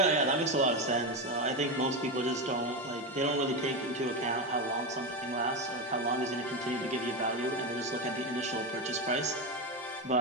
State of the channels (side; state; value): both; normal; correlation 0.15